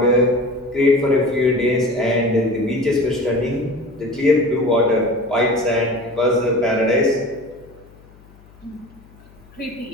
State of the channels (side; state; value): left; noise; hum, 26 dB below the sound